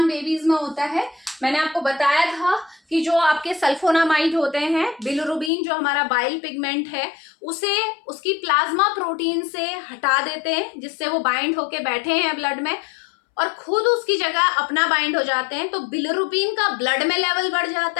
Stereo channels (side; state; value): right; drops out; at 5.5 s